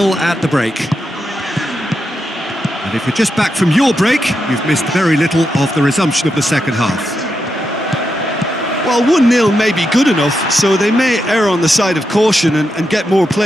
at the break. And if you're just back from your break, you've missed very little of the resumption of the second half. Well, 1-0 may be good enough, so they may err on the side of caution and get more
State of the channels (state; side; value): normal; both; correlation 0.85